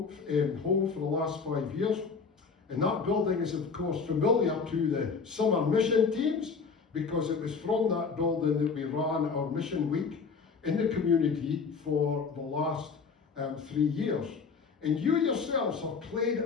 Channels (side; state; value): right; quieter; 5.2 dB